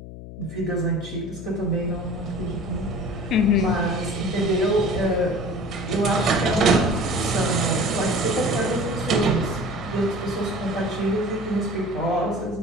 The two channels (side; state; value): left; noise; hum, 13 dB below the sound